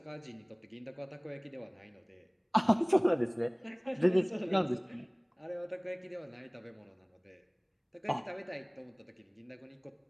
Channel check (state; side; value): identical; both; correlation 1.00